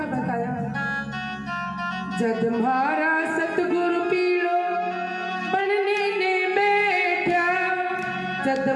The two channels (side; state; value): both; identical; correlation 1.00